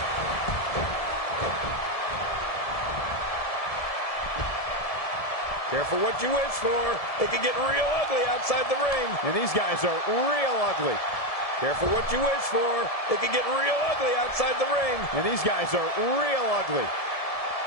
Careful what you wish for. It can get real ugly outside the ring. And these guys are real ugly. Careful what you wish for. It can get real ugly outside the ring. And these guys are real ugly.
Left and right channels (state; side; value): late; right; 1.7 ms